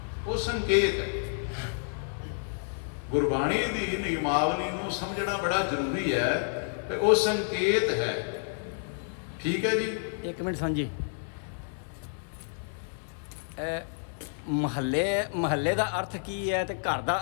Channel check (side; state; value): right; silent; 58 dB below the other